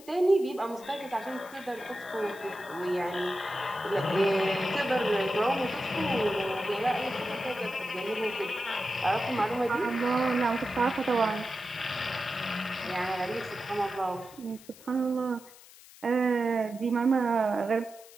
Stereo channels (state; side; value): noise; left; hiss, 21 dB below the sound